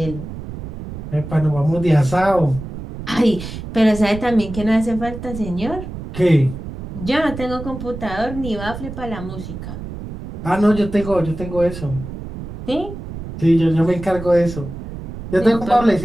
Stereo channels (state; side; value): noise; right; rumble, 10 dB below the sound